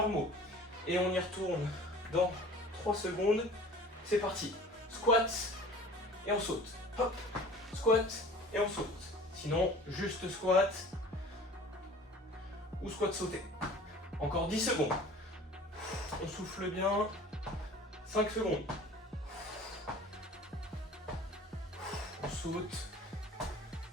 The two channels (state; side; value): normal; both; correlation 0.44